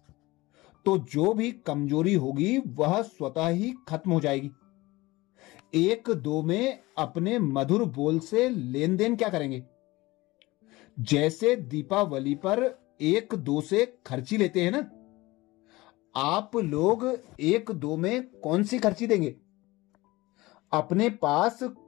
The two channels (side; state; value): right; quieter; 20.3 dB